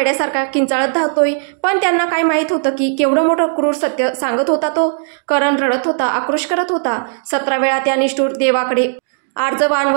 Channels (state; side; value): silent; left; 68 dB below the other